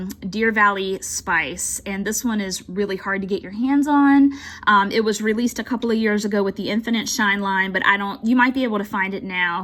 Deer Valley Spice, and this one is really hard to get your hands on. It was released a couple of years years ago with the Infinite Shine line, but you might be able to find it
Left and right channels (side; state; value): both; identical; correlation 1.00